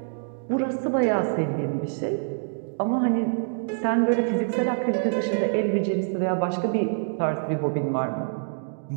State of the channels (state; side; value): silent; left; digital silence